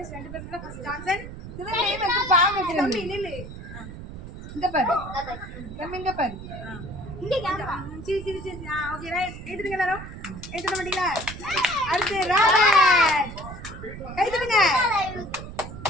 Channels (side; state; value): right; noise; rumble, 11 dB below the sound